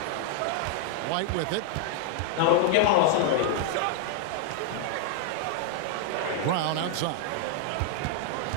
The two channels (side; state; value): both; different; correlation 0.00